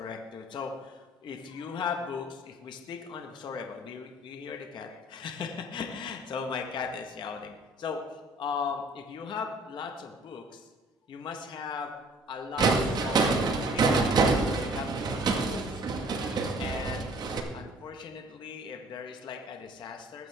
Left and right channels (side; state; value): both; normal; correlation 0.54